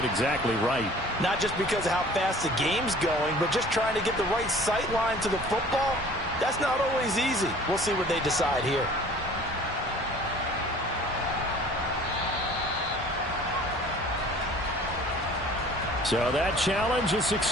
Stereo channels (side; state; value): both; normal; correlation 0.48